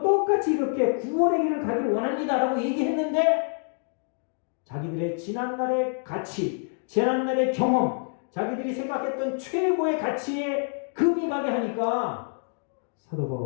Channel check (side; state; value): right; silent; 57 dB below the other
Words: 똑같이 이렇게 구원의 길을 가길 원합니다 라고 얘기했는데 자기들의 지난날의 가치, 지난날의 경험, 자기들이 생각했던 최고의 가치에 금이 가게 하니까 사도